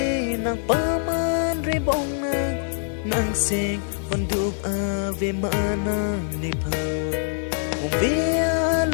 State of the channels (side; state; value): right; silent; 55 dB below the other